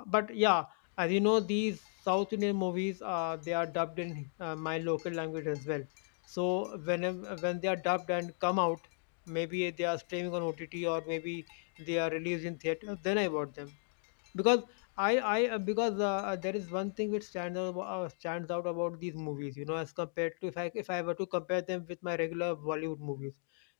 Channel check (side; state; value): right; silent; digital silence